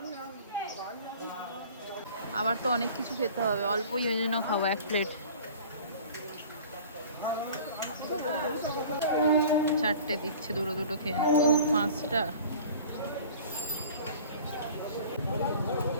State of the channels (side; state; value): both; inverted; correlation -0.44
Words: আমার তো অনেক কিছু খেতে হবে, অল্পই ওই জন্য খাবো এক প্লেট। চারটে দিচ্ছে, দুটো দুটো খেয়ে নাও। ও 5টা,